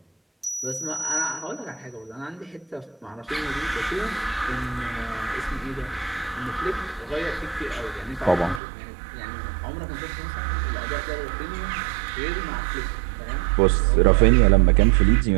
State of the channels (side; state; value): left; drops out; at 8.6 s